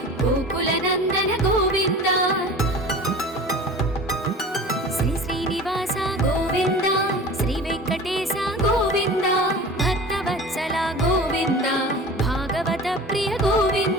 गोकुलनन्दन गोविन्द श्री श्रीनिवास गोविन्द श्रीवेङ्कटेश गोविन्द भक्तवत्सल गोविन्द भागवत प्रिय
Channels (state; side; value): normal; both; correlation 0.38